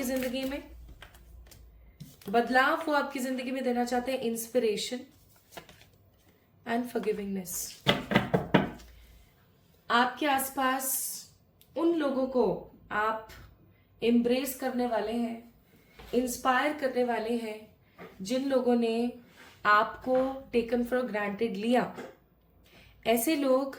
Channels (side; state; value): both; identical; correlation 1.00